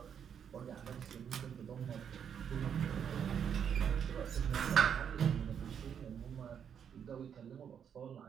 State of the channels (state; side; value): quieter; left; 8.0 dB